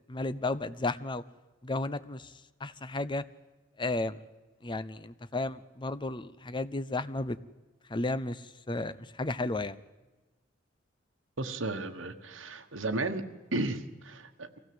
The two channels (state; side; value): normal; both; correlation 0.44